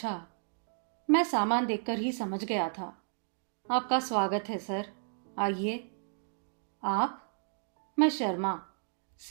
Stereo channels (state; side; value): silent; left; digital silence